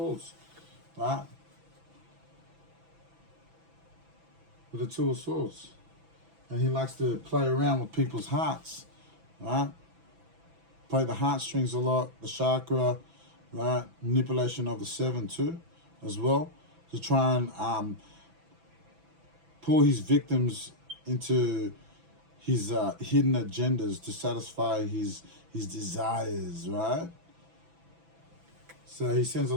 right? With the Two of Swords. And he likes to play around with people's hearts, right? Play the heartstrings a lot, the chakra, right? Manipulation of the seven too, as well, to try and pull his victims into his hidden agendas to satisfy his desires, right? So he sends a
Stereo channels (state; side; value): late; left; 6.0 ms